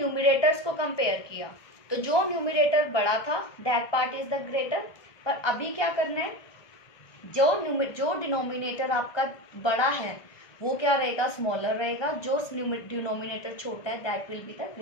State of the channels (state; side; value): late; right; 1.2 ms